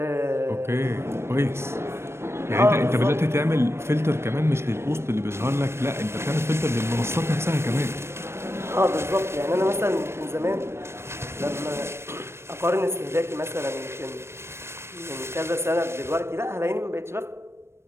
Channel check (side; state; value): left; late; 0.12 ms